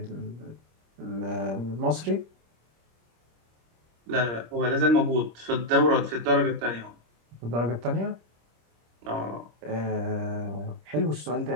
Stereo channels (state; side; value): late; left; 26 ms